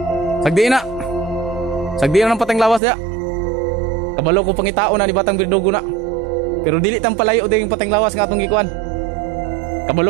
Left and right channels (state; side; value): drops out; left; at 2.8 s